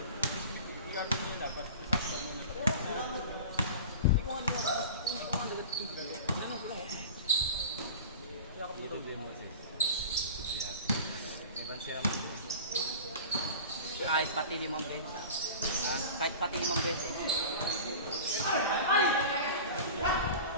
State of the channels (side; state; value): both; inverted; correlation -0.36